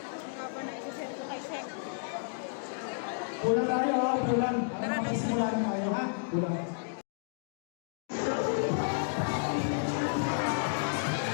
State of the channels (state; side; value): silent; right; digital silence